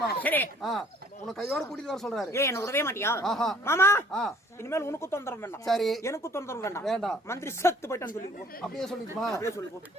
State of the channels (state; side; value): normal; both; correlation 0.57